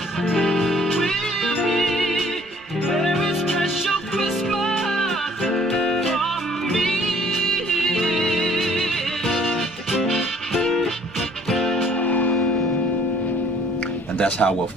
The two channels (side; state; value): right; noise; rumble, 29 dB below the sound